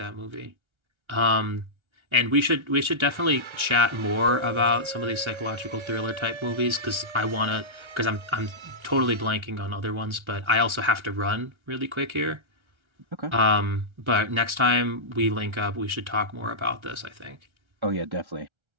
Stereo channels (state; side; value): late; left; 1.3 ms